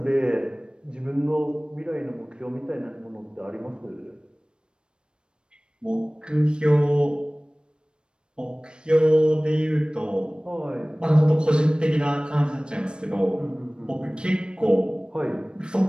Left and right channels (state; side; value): late; left; 0.053 ms